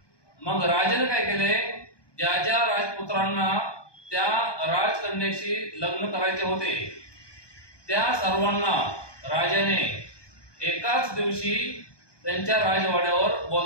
मग राजाने काय केले, ज्या ज्या राजपुत्रांना त्या राजकन्येशी लग्न करायचे होते त्या सर्वांना राजाने एकाच दिवशी त्यांच्या राजवाड्यावर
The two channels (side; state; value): right; late; 1.2 ms